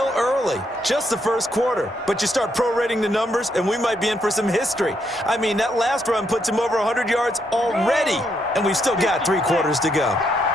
early, just the first quarter. But you start prorating the numbers, and we might be in for some history. I mean, that last run puts him over 100 yards already, and we've still got 3 quarters to go.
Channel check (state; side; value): normal; both; correlation 0.76